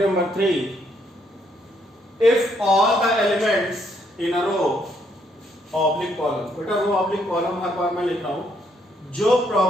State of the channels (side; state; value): both; normal; correlation 0.72